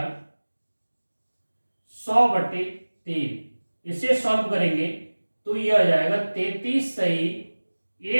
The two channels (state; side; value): inverted; both; correlation -1.00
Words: 100/3। इसे सॉल्व करेंगे तो ये आ जाएगा 33 सही